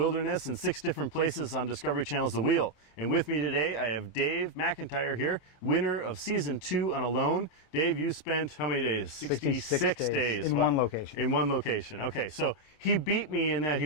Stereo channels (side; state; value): right; late; 27 ms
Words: in 6 different places on Discovery Channel's The Wheel. And with me today, I have Dave McIntyre here, winner of Season 2 on Alone. Dave, you spent how many days? 66 days. In What? one location. In one location. Okay, so he beat me in that he